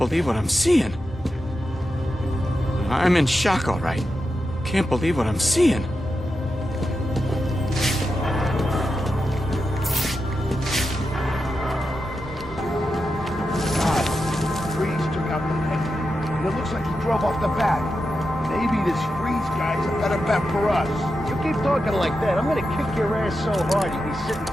what I'm seeing. I'm in shock, all right. Can't believe what I'm seeing. God, Freeze took out the head. And it looks like he drove off the bat. Maybe this Freeze guy's a better bet for us. You keep talking like that, I'm gonna kick your ass so hard you'll be sitting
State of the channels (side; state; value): both; normal; correlation 0.89